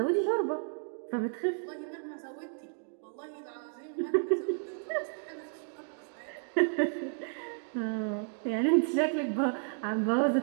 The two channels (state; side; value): silent; left; 56 dB below the other